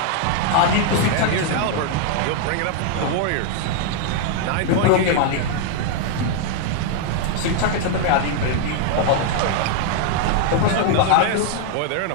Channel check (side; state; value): both; different; correlation 0.00